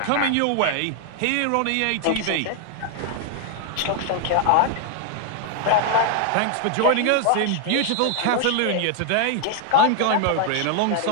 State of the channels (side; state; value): both; different; correlation 0.00